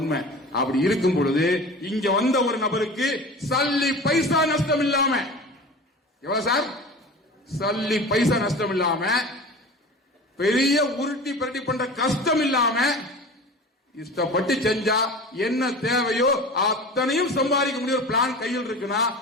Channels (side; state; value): both; normal; correlation 0.36